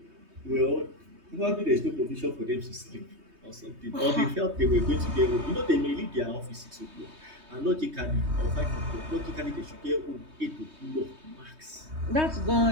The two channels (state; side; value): late; left; 3.2 ms